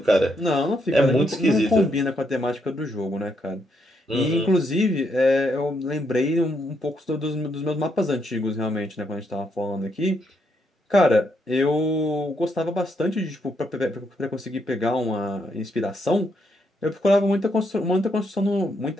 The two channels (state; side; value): normal; both; correlation 0.77